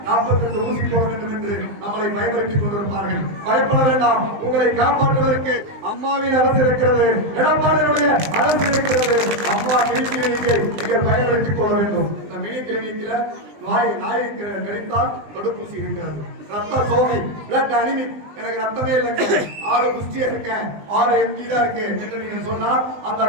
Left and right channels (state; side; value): late; left; 20 ms